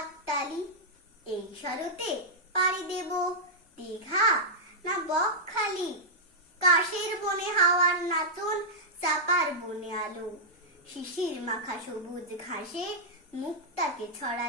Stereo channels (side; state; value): both; normal; correlation -0.09